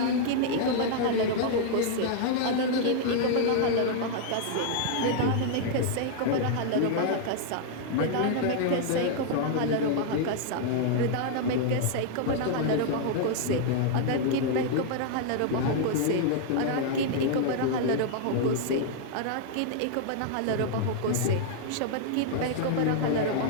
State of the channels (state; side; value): different; both; correlation -0.01